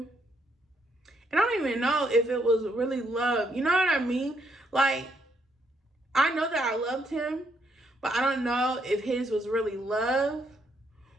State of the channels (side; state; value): both; normal; correlation 0.74